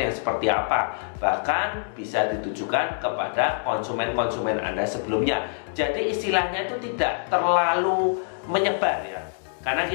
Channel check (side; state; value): right; silent; digital silence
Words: seperti apa. Bahkan bisa ditujukan kepada konsumen-konsumen Anda sebelumnya. Jadi istilahnya itu tidak terlalu menyebar ya. Karena